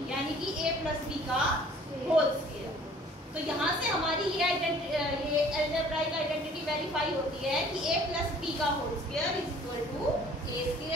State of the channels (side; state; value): both; normal; correlation 0.53